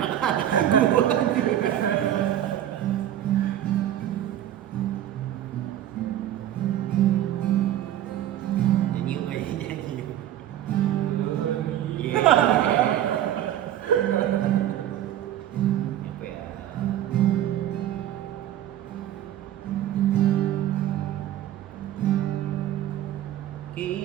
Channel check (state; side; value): quieter; left; 11.8 dB